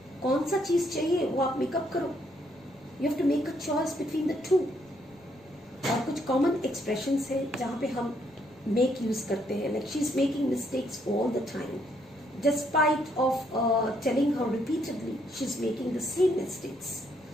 कौन सा चीज चाहिए वो आप makeup करो. You have to make a choice between the two. और कुछ कॉमन एक्सप्रेशंस है जहाँ पे हम मेक यूज करते हैं. Like she is making mistakes all the time. Despite of telling her repeatedly, she's making the same mistakes.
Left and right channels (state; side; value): noise; left; rumble, 30 dB below the sound